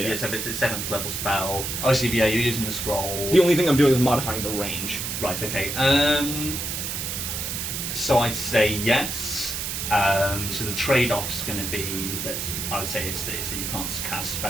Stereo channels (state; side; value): noise; right; hiss, 3 dB below the sound